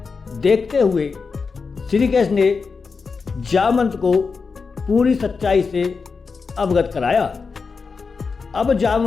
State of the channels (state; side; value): quieter; right; 4.9 dB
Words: देखते हुए श्री कृष्ण ने जामवंत को पूरी सच्चाई से अवगत कराया। अब